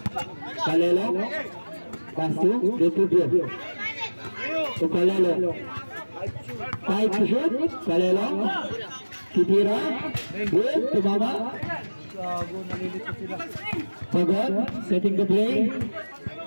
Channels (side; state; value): both; inverted; correlation -1.00